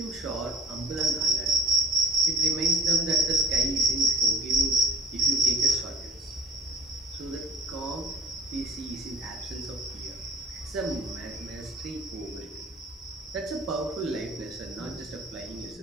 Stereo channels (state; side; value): normal; both; correlation 0.48